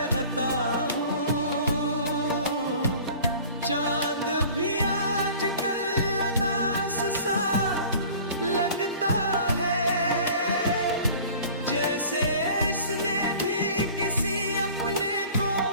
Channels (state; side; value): inverted; both; correlation -0.45